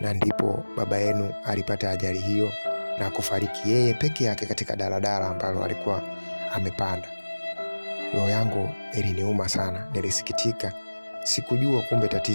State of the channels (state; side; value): inverted; both; correlation -1.00